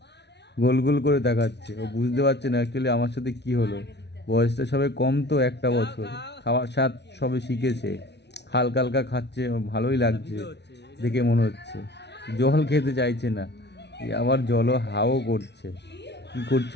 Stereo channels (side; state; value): right; late; 0.50 ms